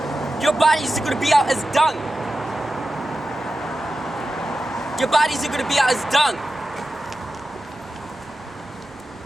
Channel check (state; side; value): normal; both; correlation 0.92